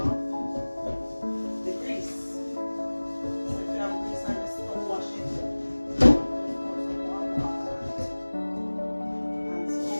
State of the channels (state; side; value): inverted; both; correlation -1.00